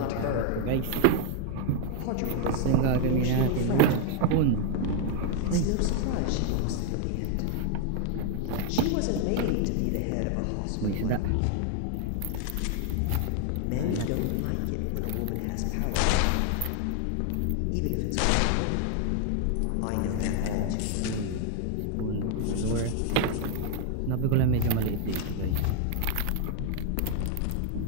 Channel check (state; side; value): different; both; correlation 0.00